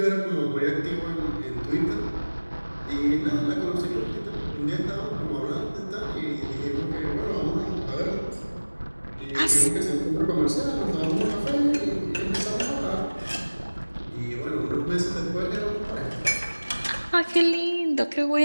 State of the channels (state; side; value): inverted; both; correlation -1.00